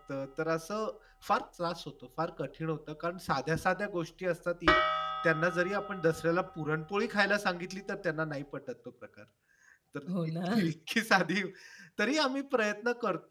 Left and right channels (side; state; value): both; identical; correlation 1.00